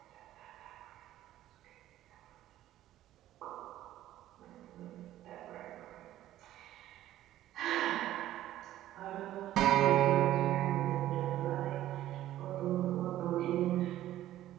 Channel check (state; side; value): quieter; left; 13.6 dB